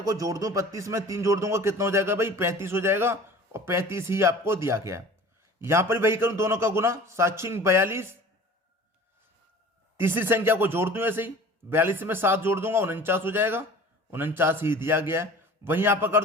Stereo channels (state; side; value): normal; both; correlation 0.43